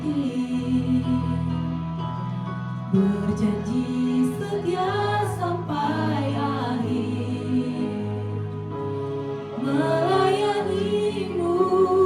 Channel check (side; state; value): both; identical; correlation 1.00